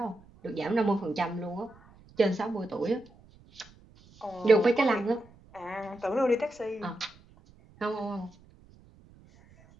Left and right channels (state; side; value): noise; right; rumble, 26 dB below the sound